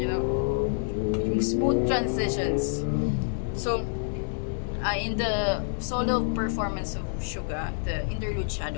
know, yung smooth transitions. So in the solo performance of Suga, the Interlude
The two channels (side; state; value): right; silent; 60 dB below the other